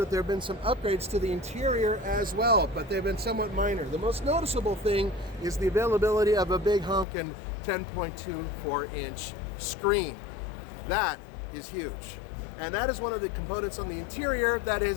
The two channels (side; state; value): right; drops out; at 7.1 s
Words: there have been some upgrades to the interior as well, but they've been somewhat minor. The most noticeable thing is the availability of a big honkin' 10.24-inch screen. That is huge. And that is one of the components on the interior that